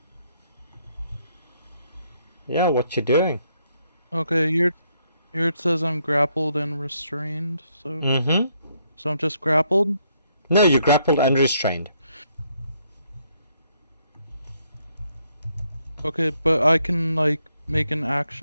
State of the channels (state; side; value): inverted; both; correlation -0.73